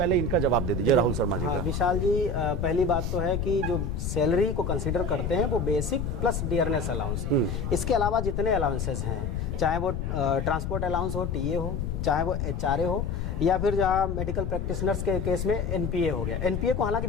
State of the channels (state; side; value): noise; left; rumble, 2 dB below the sound